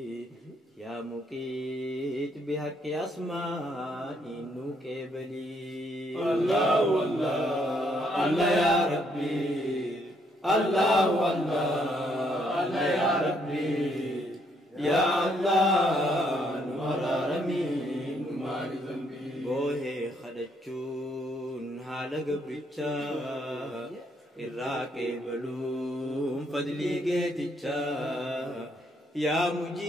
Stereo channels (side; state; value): both; normal; correlation 0.71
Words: يا مقيت بحق أسماء نوكبلي الله الله الله يا ربي الله الله الله يا ربي يا الله نورارمي نماري ذنبي بوهي خدچون حال قبرچا الراقي بلوم فضلي قيتچا يا